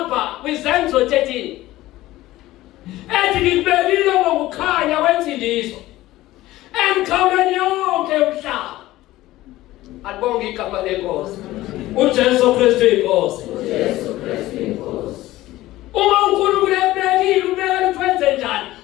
kwiZenzo 13 ethi ngibekile ngokukhanya kwensindiso emkhawulweni yonke umhlaba. Alibonge igama lenkosi. uJesu Kristu inkosi. uJesu Kristu inkosi. Uma uNkulunkulu ebekile ubekela ukwenze njani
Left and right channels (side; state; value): right; quieter; 16.6 dB